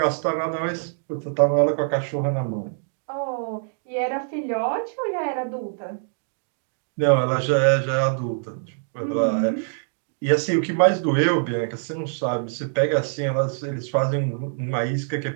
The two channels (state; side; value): silent; left; digital silence